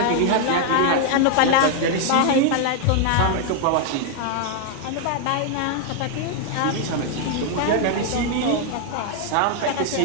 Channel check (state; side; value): different; both; correlation 0.00